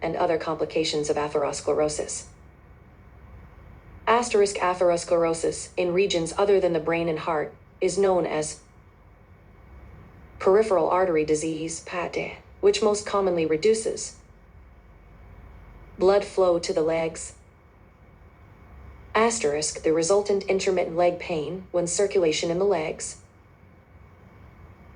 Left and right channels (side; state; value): both; identical; correlation 1.00